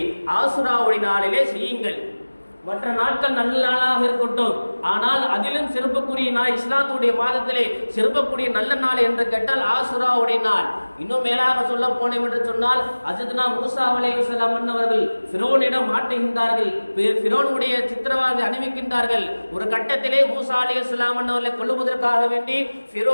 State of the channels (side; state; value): both; inverted; correlation -1.00